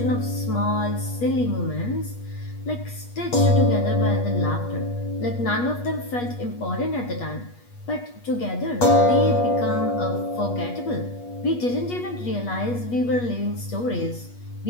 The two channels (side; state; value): right; late; 8.3 ms